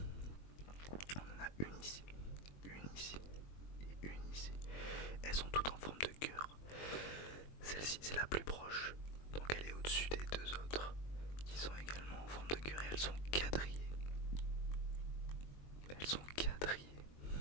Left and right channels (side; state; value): right; late; 21 ms